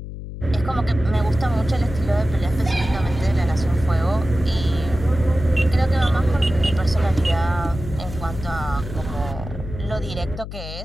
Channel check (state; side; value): noise; left; hum, 10 dB below the sound